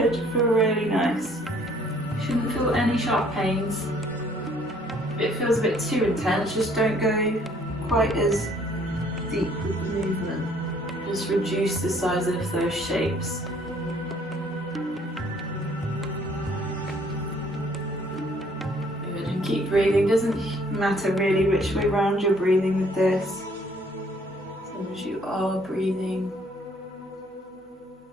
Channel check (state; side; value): normal; both; correlation 0.61